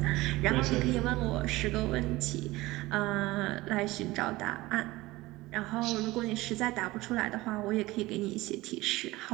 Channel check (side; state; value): left; quieter; 19.4 dB